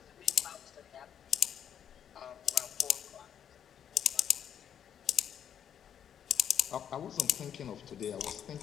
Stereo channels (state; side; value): quieter; right; 8.9 dB